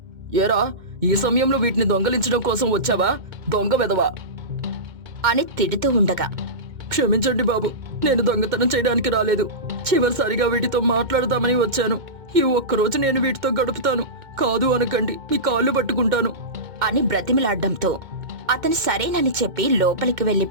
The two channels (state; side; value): late; left; 2.1 ms